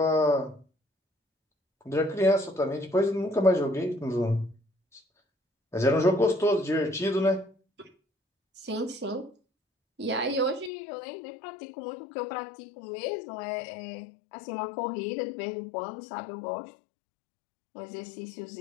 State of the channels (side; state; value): right; drops out; at 10.7 s